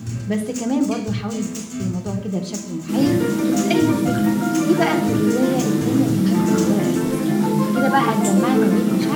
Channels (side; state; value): both; identical; correlation 1.00